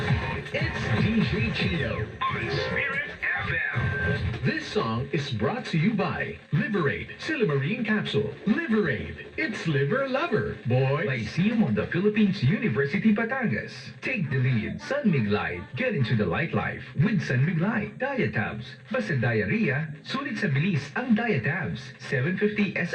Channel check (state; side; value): identical; both; correlation 1.00